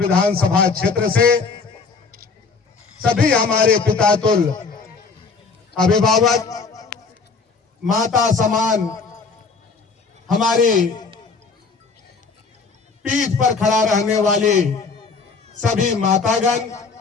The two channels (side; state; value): right; quieter; 4.5 dB